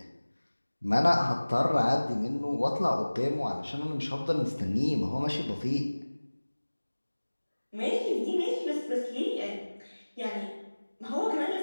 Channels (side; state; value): both; inverted; correlation -1.00